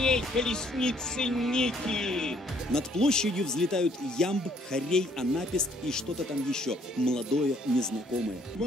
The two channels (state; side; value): normal; both; correlation 0.64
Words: колесницы Ники. Над площадью взлетают ямб, хорей, анапест и что-то там еще, молодое, незнакомое. В